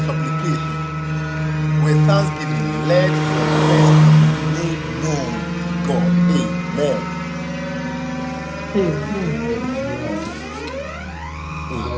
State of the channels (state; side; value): identical; both; correlation 1.00